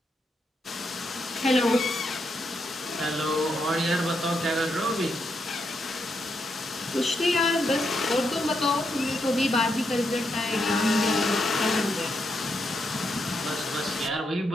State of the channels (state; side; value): normal; both; correlation 0.81